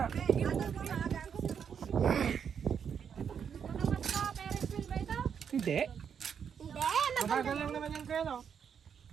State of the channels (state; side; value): quieter; left; 7.4 dB